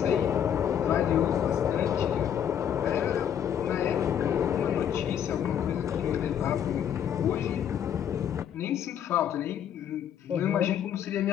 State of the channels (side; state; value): right; quieter; 9.2 dB